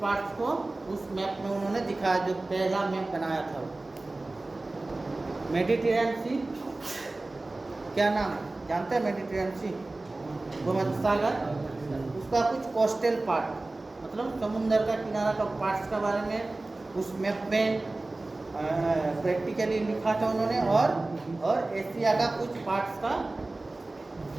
पार्ट्स को उस मैप में उन्होंने दिखाया, जो पहला मैप बनाया था। मेडिटेरेनियन सी क्या नाम है? जानते हैं मेडिटेरेनियन सी? भूमध्य सागर, उसका कुछ कोस्टल पार्ट मतलब समुद्र का किनारा का पार्ट्स के बारे में उस मैप में प्रैक्टिकली लिखा था उन्होंने, और एशिया का कुछ पार्ट्स का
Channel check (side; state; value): left; quieter; 3.0 dB